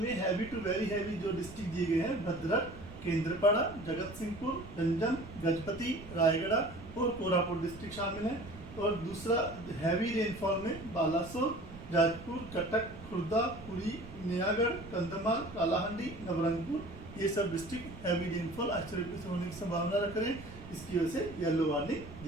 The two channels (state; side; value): noise; right; rumble, 15 dB below the sound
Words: में हैवी टू वेरी हैवी जो डिस्ट्रिक्ट दिए गए हैं भद्रक, केंद्रपाड़ा, जगत सिंहपुर, गंजम, गजपति, रायगढ़ और कोरापुट डिस्ट्रिक्ट शामिल हैं। और दूसरा हैवी रेनफॉल में बालासोर, जाजपुर, कटक, खुर्दा, पुरी, नयागढ़, कंधमाल, कालाहांडी, नवरंगपुर, ये सब डिस्ट्रिक्ट हैवी रेनफॉल आइसोलेटेड होने की संभावना रख रहे हैं। इसकी वजह से येलो वार्निंग